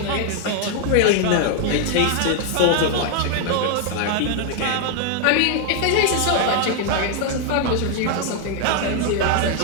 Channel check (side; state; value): both; different; correlation 0.00